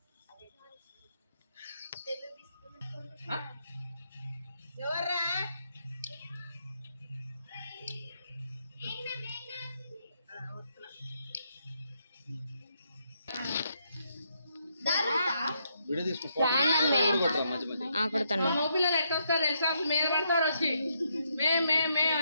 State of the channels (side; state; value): both; inverted; correlation -0.77